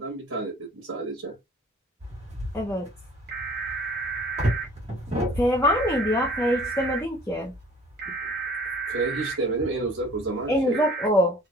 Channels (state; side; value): normal; both; correlation 0.50